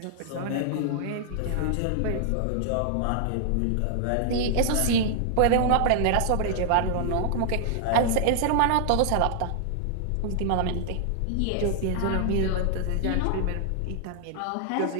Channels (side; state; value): both; different; correlation -0.01